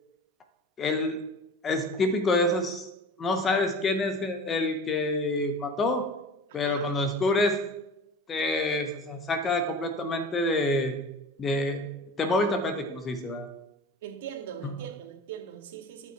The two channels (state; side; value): normal; both; correlation 0.36